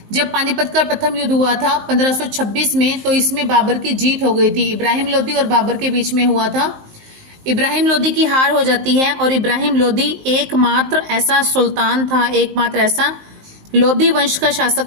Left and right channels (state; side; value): late; left; 19 ms